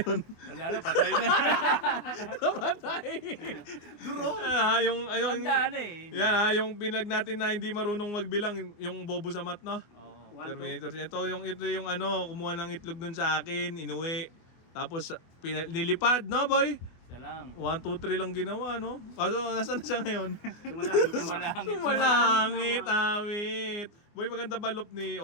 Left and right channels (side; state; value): right; late; 24 ms